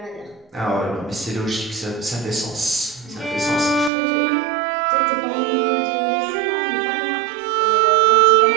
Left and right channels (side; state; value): left; drops out; at 3.9 s